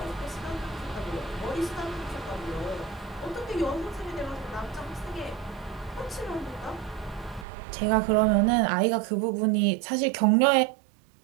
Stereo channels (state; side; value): drops out; left; at 7.5 s